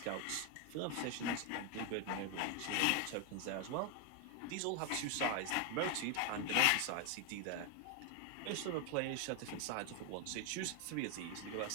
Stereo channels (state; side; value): different; both; correlation 0.01